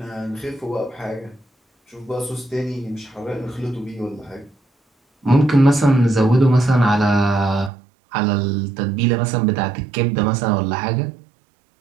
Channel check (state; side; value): drops out; left; at 7.7 s